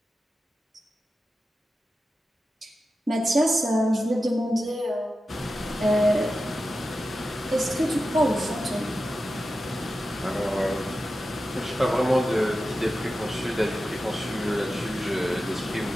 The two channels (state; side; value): normal; both; correlation 0.92